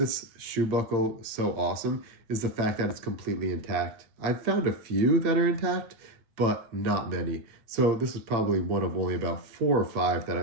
shoe buckle so awesome is the fact that it's completely intact. I've found a few that are intact, but not many. So this is probably one of only about 4 or 5 that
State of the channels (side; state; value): left; late; 8.8 ms